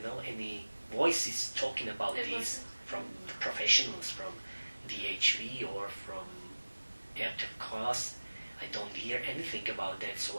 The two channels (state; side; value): inverted; both; correlation -1.00